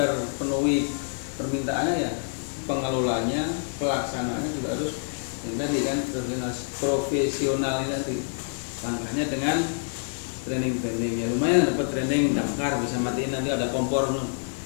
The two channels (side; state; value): right; silent; 60 dB below the other